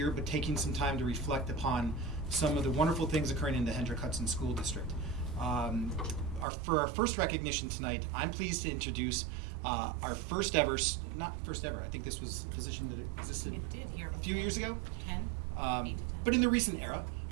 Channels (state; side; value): drops out; left; at 6.5 s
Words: but taking some time to reflect upon some of the wonderful things occurring in the Hendrick Hudson School District. For our first recognition tonight, I'm pleased to introduce our first ever, not first ever, I think this was a position that existed It did here a few years ago. 10, 8 to 10. But in the recent era,